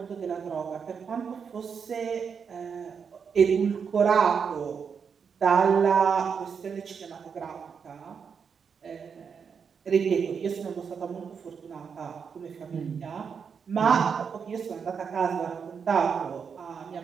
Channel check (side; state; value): left; quieter; 6.4 dB